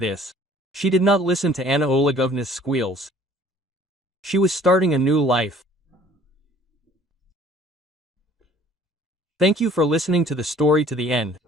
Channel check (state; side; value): normal; both; correlation 0.54